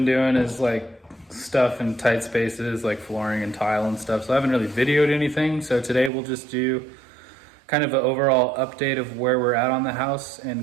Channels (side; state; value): left; drops out; at 6.1 s